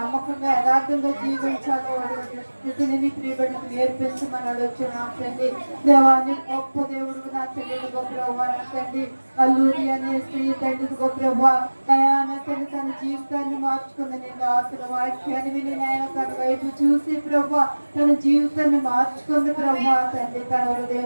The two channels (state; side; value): inverted; both; correlation -1.00